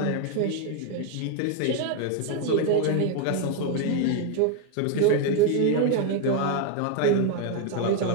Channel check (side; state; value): both; different; correlation 0.01